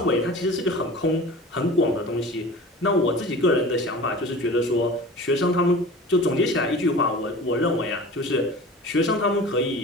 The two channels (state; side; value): normal; both; correlation 0.38